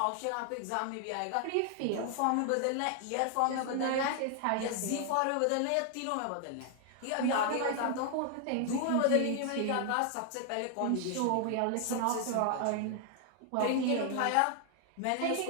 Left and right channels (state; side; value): different; both; correlation 0.00